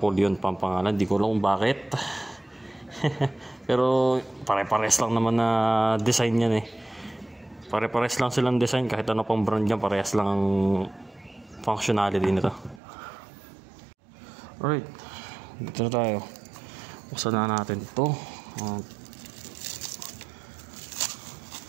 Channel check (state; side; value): drops out; left; at 12.8 s